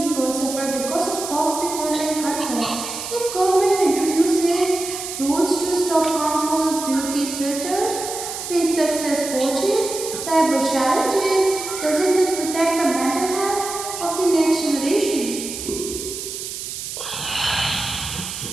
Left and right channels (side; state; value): right; noise; hiss, 7 dB below the sound